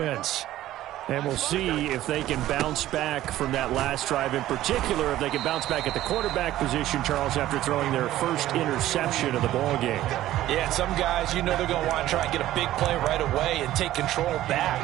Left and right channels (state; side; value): quieter; left; 14.2 dB